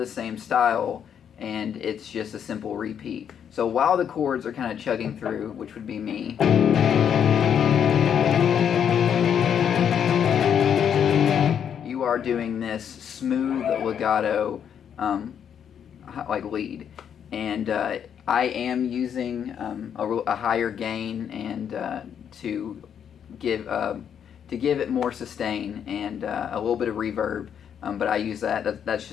same style, and it's just a simple repeat. So while the chords are kind of chugging through, which would be me, you are doing this smooth legato like lead, and I am using a higher gain and to give it more sustain and a little bit of reverb, but I use that's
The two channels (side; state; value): right; quieter; 8.4 dB